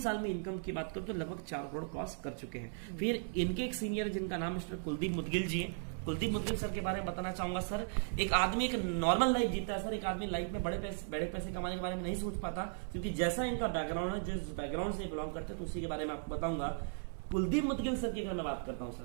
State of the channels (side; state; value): left; silent; 53 dB below the other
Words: में इनकम की बात करो तो लगभग 4 करोड़ क्रॉस कर चुके हैं। फिर इनके एक सीनियर, जिनका नाम मिस्टर कुलदीप मुदगिल जी है। कुलदीप मुदगिल सर के बारे में बताना चाहूंगा सर। एक आदमी एक नॉर्मल लाइफ जीता है सर। एक आदमी लाइफ में बड़े पैसे कमाने के बारे में नहीं सोच पाता, क्योंकि जैसा इनका बैकग्राउंड है, जिस बैकग्राउंड से बिलोंग करते हैं, तो उसी के बारे में आपको बताऊंगा। कुलदीप मुदगिल सर की अगर मैं बात करता हूं